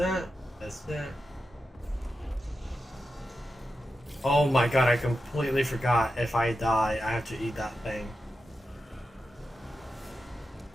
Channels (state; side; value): normal; both; correlation 0.90